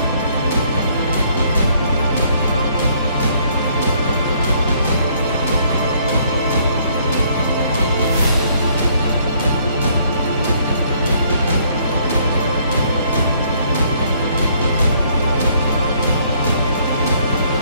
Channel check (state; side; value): inverted; both; correlation -0.65